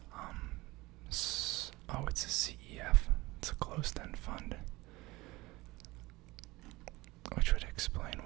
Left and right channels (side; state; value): left; quieter; 21.0 dB